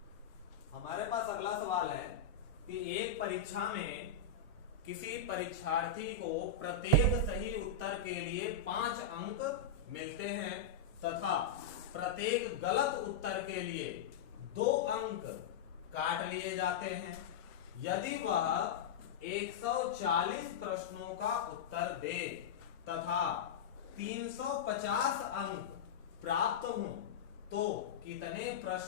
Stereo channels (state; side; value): quieter; right; 5.5 dB